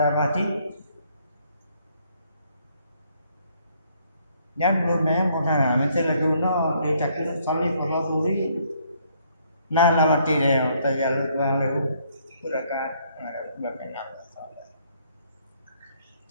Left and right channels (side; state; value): both; inverted; correlation -0.67